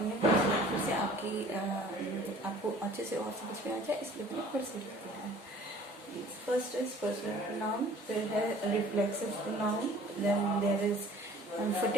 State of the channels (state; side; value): normal; both; correlation 0.51